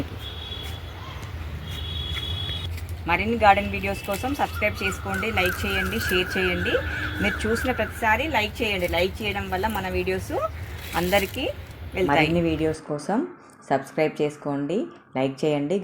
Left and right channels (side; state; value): both; identical; correlation 1.00